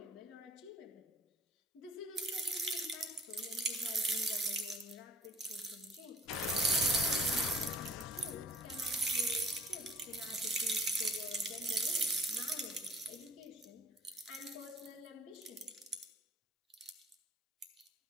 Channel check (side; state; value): both; normal; correlation 0.53